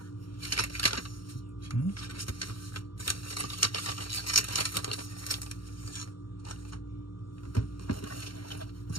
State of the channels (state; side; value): late; right; 0.73 ms